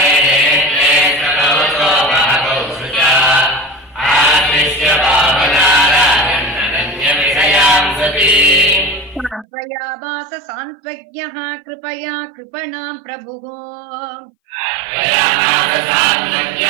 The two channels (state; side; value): drops out; left; at 9.5 s